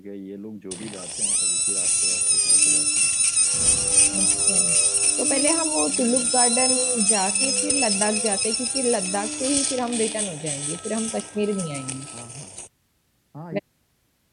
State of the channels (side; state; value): both; identical; correlation 1.00